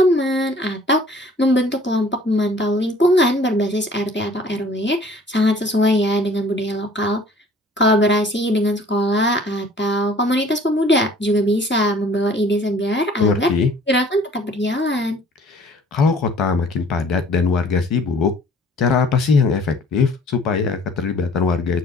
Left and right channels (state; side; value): normal; both; correlation 0.53